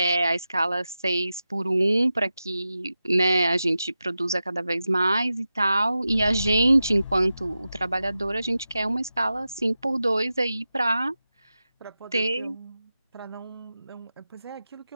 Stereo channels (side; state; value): both; inverted; correlation -0.92